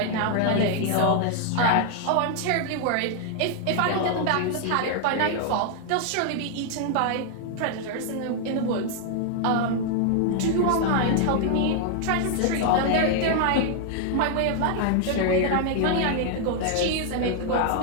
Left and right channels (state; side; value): different; both; correlation 0.00